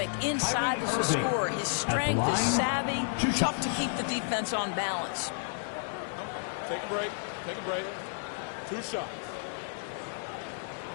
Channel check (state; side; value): silent; right; digital silence